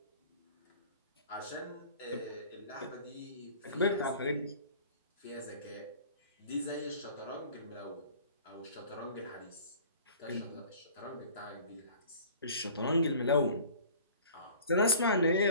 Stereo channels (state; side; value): inverted; both; correlation -0.46